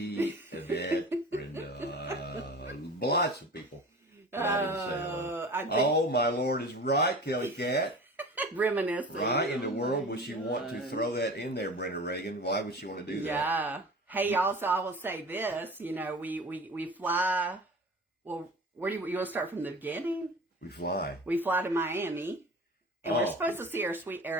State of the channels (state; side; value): normal; both; correlation 0.38